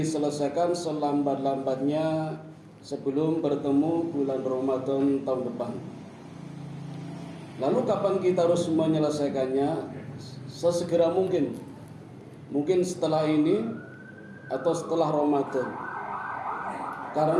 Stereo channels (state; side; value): identical; both; correlation 1.00